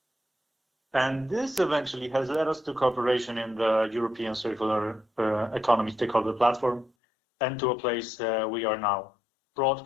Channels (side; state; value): right; drops out; at 6.9 s